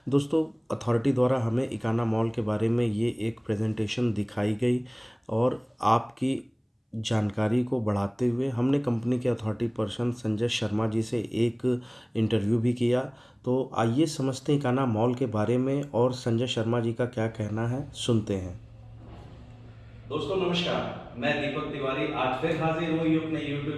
दोस्तों अथॉरिटी द्वारा हमें इकाना मॉल के बारे में ये एक प्रेजेंटेशन दिखाई गई और आपकी जानकारी को बढ़ाते हुए हमने कंपनी के अथॉरिटी पर्सन संजय शर्मा जी से एक इंटरव्यू भी किया। तो आइए समझते हैं इकाना मॉल के बारे में और संजय शर्मा जी का क्या कहना है, सुनते हैं। दोस्तों नमस्कार, मैं दीपक तिवारी आज फिर हाजिर हुई अपने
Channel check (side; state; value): both; identical; correlation 1.00